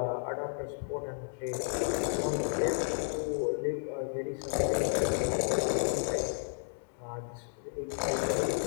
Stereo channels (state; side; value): silent; right; digital silence